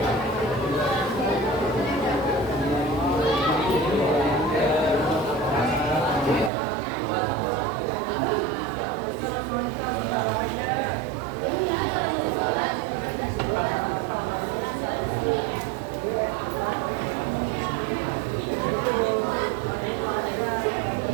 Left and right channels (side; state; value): left; drops out; at 6.5 s